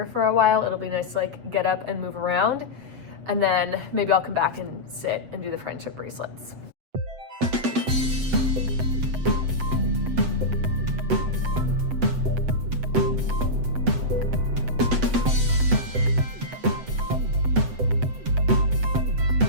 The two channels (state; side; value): late; left; 7.9 ms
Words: for a while. It'll be nice to like get up and move around, and then maybe I'll come back and sit and do the friendship bracelets.